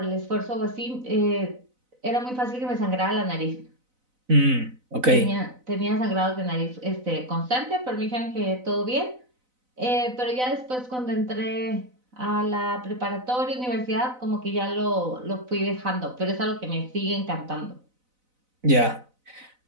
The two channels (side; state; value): left; late; 4.0 ms